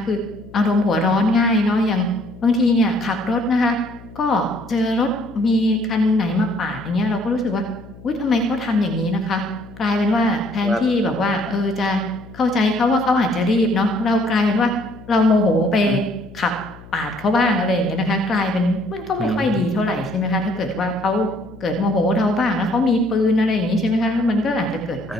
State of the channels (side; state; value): left; noise; hum, 20 dB below the sound